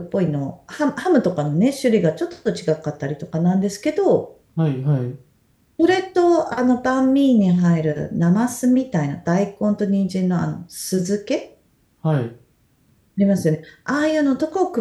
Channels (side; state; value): both; identical; correlation 1.00